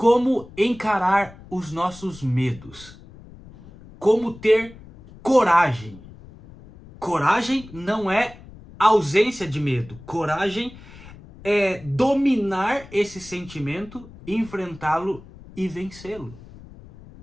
encarar os nossos medos. Como ter coragem. Coragem não é ausência de medo. Coragem é dominar esse sentimento, enfrentá-lo e vencê-lo.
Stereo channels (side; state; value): left; noise; rumble, 19 dB below the sound